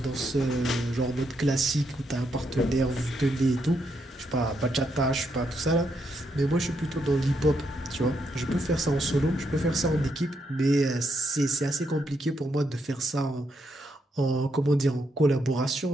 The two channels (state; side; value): normal; both; correlation 0.78